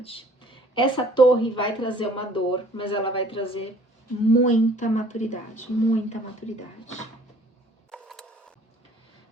Essa torre vai trazer uma dor, mas ela vai trazer muita maturidade, muita maturidade.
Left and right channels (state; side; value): normal; both; correlation 0.55